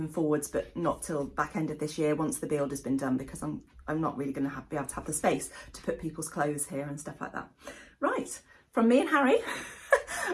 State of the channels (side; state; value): both; identical; correlation 1.00